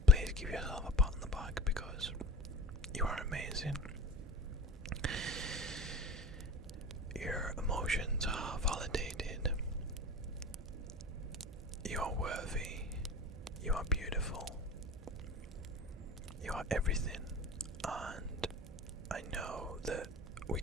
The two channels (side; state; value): both; normal; correlation 0.35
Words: please give yourself a pat on the back, because you are amazing. Your emotions are validated. You are worthy. You are beautiful. You are everything. And I know that we